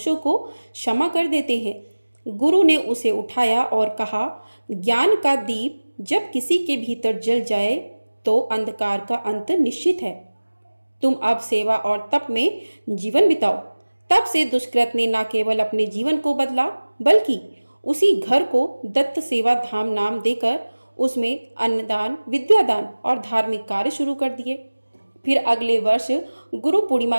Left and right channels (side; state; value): both; inverted; correlation -1.00